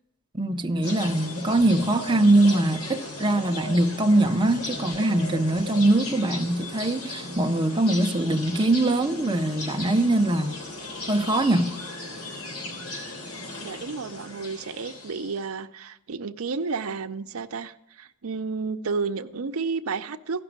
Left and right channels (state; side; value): normal; both; correlation 0.70